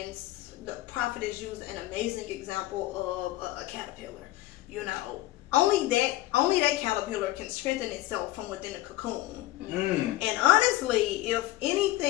the prophetess used an amazing example of a caterpillar. You know, only that caterpillar can strengthen itself from within a cocoon. And honestly, if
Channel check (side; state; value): right; quieter; 16.6 dB